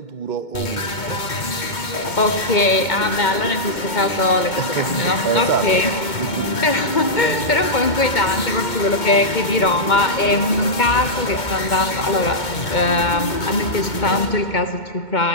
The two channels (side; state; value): right; late; 2.2 ms